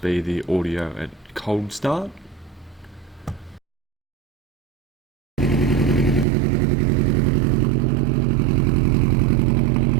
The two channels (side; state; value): left; drops out; at 6.2 s